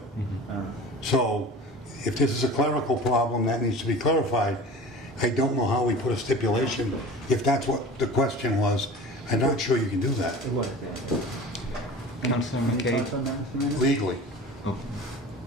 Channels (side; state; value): both; normal; correlation 0.38